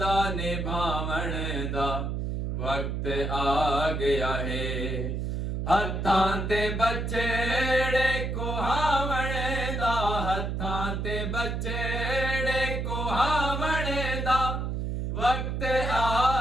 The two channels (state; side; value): noise; right; hum, 2 dB below the sound